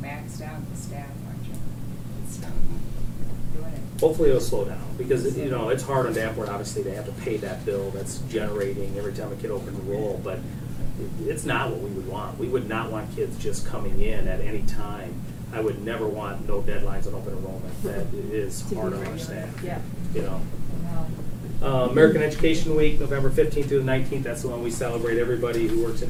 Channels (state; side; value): identical; both; correlation 1.00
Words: maxed out, the staff, aren't you? It's doing it. Hopefully it'll slow down, because, you know, it's hard on Danforth, obviously, they have to pay that bill that's generating every time a kid opens a roll, but it's not what we would want. We would not want kids just coming in at any time. I would never want no deadlines on open enrollment. That is hard on our staff. Yeah. You know. American Education Week, November 15th through the 19th, that's the one we celebrate everybody who works